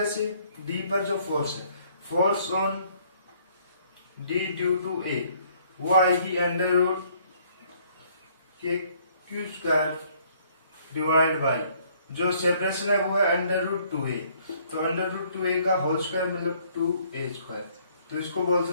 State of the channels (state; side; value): inverted; both; correlation -0.63